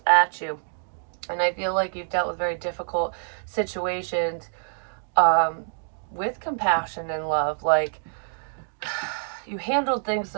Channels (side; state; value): left; silent; digital silence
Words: at you. And I feel like you've dealt with very difficult situations with compassion and love. Like, you handled things